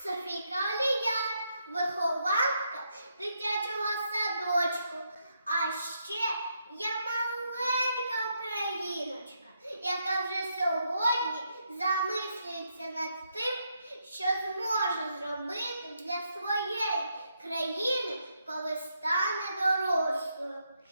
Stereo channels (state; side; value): inverted; both; correlation -0.79